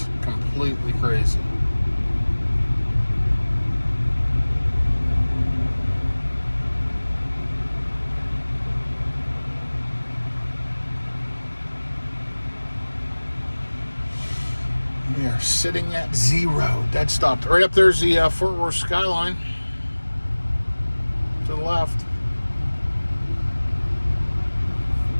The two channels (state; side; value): inverted; both; correlation -1.00